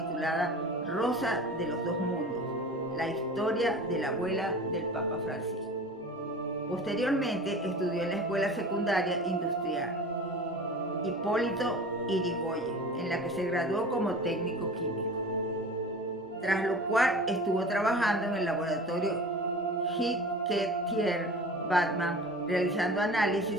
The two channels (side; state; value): both; normal; correlation 0.38